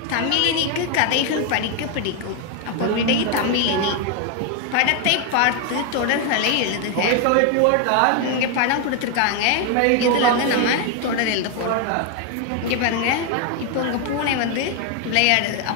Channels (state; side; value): different; both; correlation 0.01